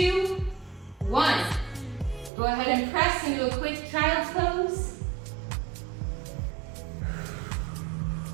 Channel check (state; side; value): drops out; left; at 2.3 s